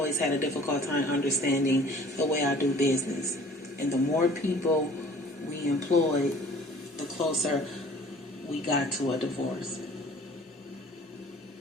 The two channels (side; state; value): both; normal; correlation 0.50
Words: had a difficult time understanding the way I do business. And the more people we employed, the closer we got to a divorce.